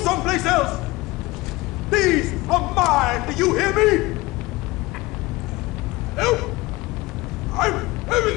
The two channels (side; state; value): right; quieter; 21.1 dB